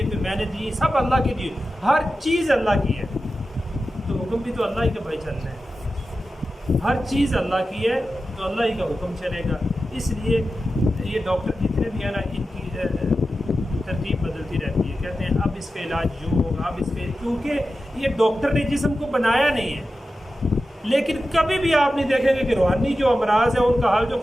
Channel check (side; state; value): both; normal; correlation 0.92